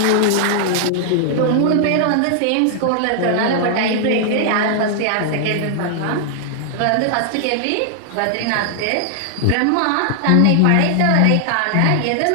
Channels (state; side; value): different; both; correlation -0.01